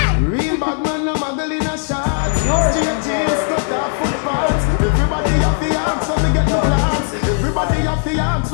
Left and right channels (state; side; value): silent; right; 58 dB below the other